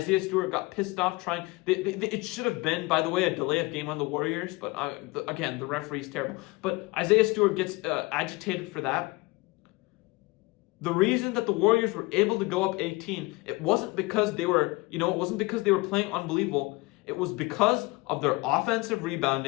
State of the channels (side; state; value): right; quieter; 23.8 dB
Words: Stewart got pissed off trying. It should have been, by the way, a delay of game on the Warriors, but again, the referee's terrible. But Isaiah Stewart gets agitated for that. The reason that the Warriors were able to go up 18, it wasn't because they were playing unbelievable. It was because of their offensive